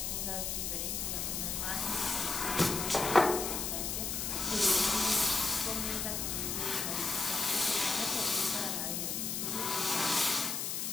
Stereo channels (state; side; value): noise; left; hiss, 1 dB below the sound